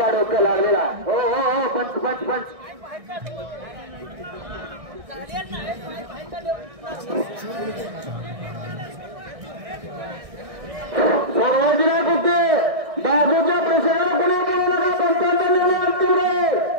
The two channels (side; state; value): left; late; 1.6 ms